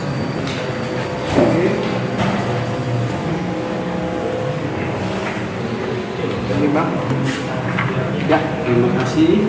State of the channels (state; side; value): identical; both; correlation 1.00